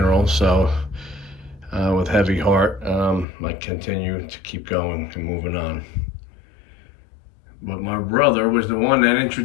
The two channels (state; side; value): drops out; right; at 3.2 s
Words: So, with heavy heart, I continue to keep going and moving on. But my brother was the one that